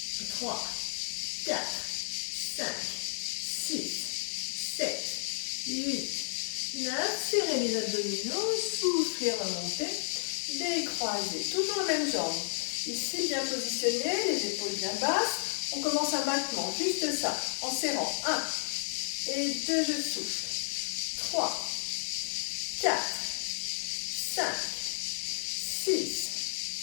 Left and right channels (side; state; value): right; silent; digital silence